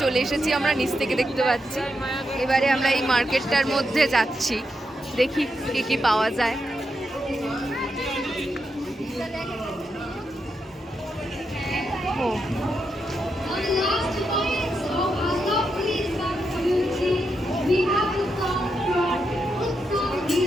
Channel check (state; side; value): normal; both; correlation 0.84